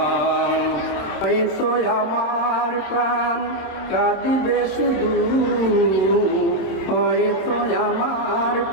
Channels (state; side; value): late; right; 27 ms